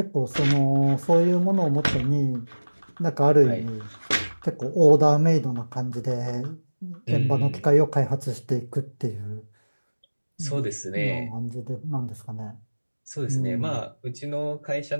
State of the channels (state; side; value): inverted; both; correlation -1.00